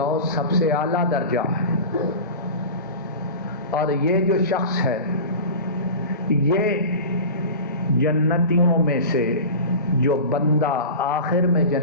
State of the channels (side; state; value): both; inverted; correlation -0.32